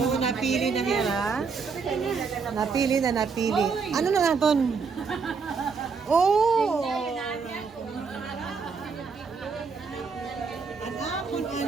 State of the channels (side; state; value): left; quieter; 5.2 dB